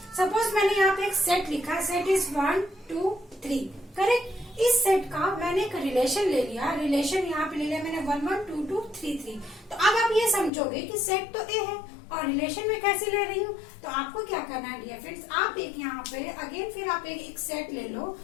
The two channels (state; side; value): drops out; right; at 10.5 s